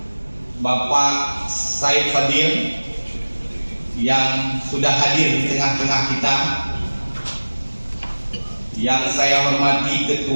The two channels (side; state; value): both; inverted; correlation -1.00